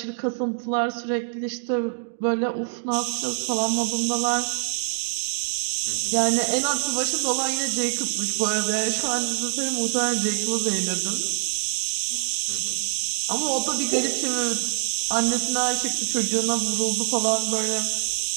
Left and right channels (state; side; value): silent; left; digital silence